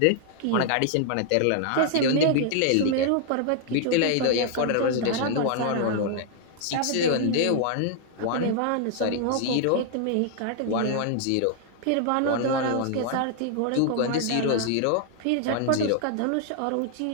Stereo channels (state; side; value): different; both; correlation 0.00